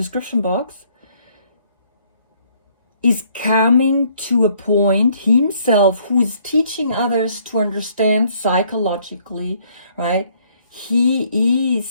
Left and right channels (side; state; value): both; inverted; correlation -0.65